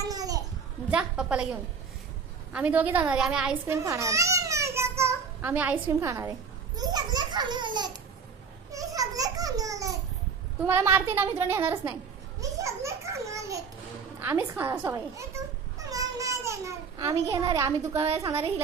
जा पप्पाला घेऊन. आम्ही दोघे जाणार आहे. आम्ही आईस्क्रीम खाणार. आम्ही आईस्क्रीम खाणार आहे. तुम्हाला मारते ना, मित्र नेणारच नाही. आम्हीच खाणार सवय. आम्ही घेणार आहे. आम्ही दुकानाला सांगणार आहे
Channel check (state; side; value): quieter; left; 5.8 dB